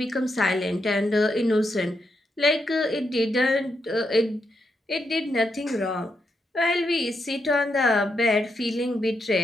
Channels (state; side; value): normal; both; correlation 0.82